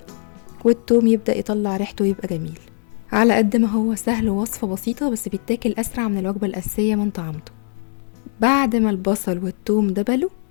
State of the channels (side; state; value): right; silent; 65 dB below the other